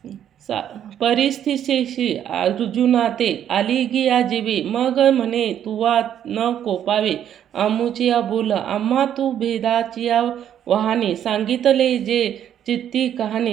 परिस्थितीशी अर्जुना ते आलिगिया जीवे. मग म्हणे तुवा न कोपावे आमुचिया बोल. आम्हा तू भेदाचिया वहाने. सांगितले जे चित्ती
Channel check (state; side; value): quieter; left; 10.0 dB